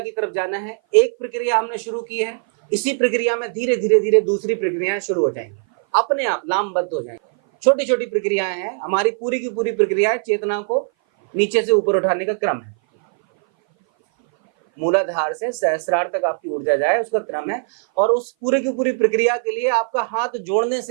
की तरफ जाना है। एक प्रक्रिया हमने शुरू की है, इसी प्रक्रिया में धीरे धीरे धीरे दूसरी प्रक्रियाएं शुरू हो जाएंगी, अपने आप लामबद्ध हो जाएंगी। छोटी छोटी प्रक्रियाएं हैं। हमारी पूरी की पूरी प्रक्रिया चेतना को नीचे से ऊपर उठाने का क्रम है। मूलाधार से सहस्रार तक आपकी ऊर्जा जाए, उसका क्रम है। और उस पूरी की पूरी प्रक्रिया के लिए आपका हाथ जोड़ने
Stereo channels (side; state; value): left; silent; 57 dB below the other